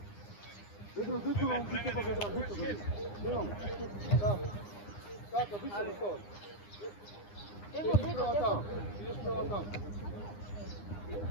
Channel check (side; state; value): right; late; 9.8 ms